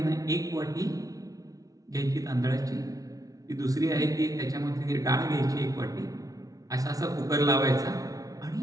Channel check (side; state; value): left; late; 0.18 ms